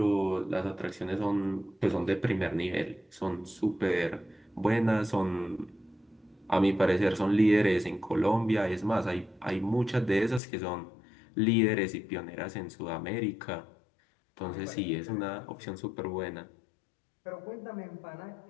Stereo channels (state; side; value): drops out; right; at 10.4 s